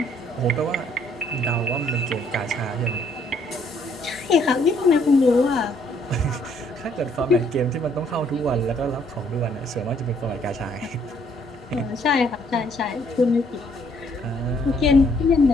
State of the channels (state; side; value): normal; both; correlation 0.66